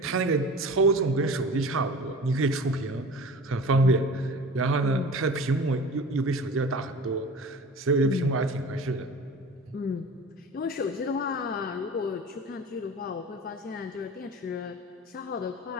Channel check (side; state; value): both; normal; correlation 0.38